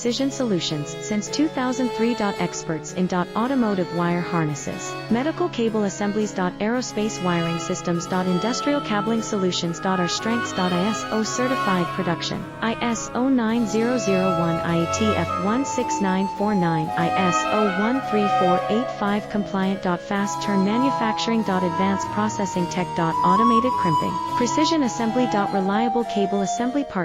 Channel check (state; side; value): identical; both; correlation 1.00